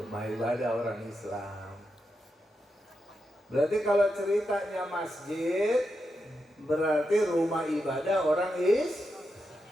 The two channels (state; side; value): normal; both; correlation 0.86